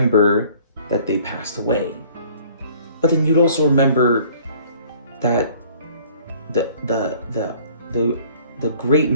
that they passed away. But then you'd also remember that the great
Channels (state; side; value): inverted; both; correlation -0.55